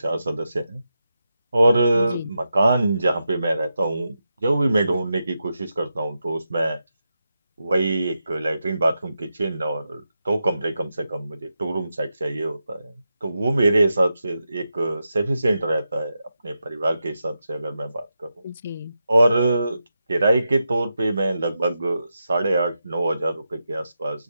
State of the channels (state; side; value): inverted; both; correlation -0.87